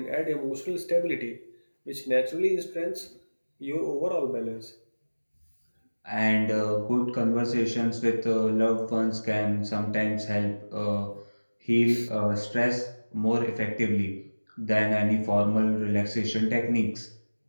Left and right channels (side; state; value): both; inverted; correlation -1.00